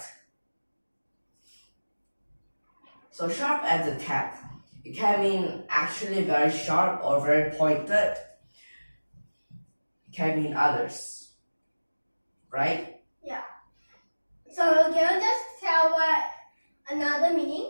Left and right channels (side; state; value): both; inverted; correlation -1.00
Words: So sharp as attack, it can mean actually very sharp or very pointed. It can mean others, right? Yeah. So can you just tell what another